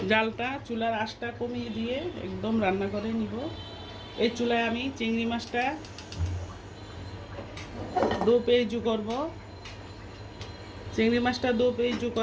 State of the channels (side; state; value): both; identical; correlation 1.00